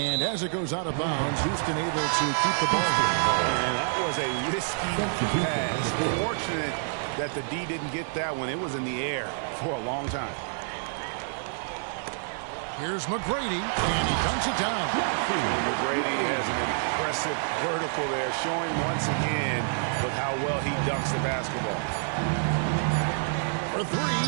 as it goes out of bounds, Houston able to keep the ball here. And that was a risky pass. Fortunate that the D didn't get that one. It was in the air for a long time. Here's McGrady, and he dunks it down. And McGrady has an impressive vertical there, showing once again with how well he dunks the basketball. For 3,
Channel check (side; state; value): left; silent; digital silence